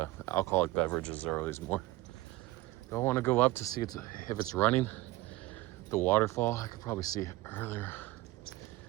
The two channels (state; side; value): quieter; left; 18.2 dB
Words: alcoholic beverages are always more. Do I want to go up to see if it's running? The waterfall, I could probably see it earlier.